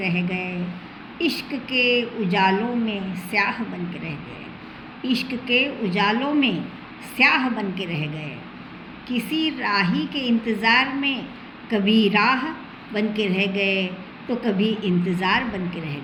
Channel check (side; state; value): both; identical; correlation 1.00